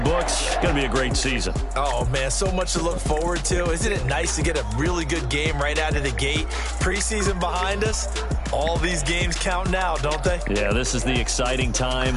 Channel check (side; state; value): both; identical; correlation 1.00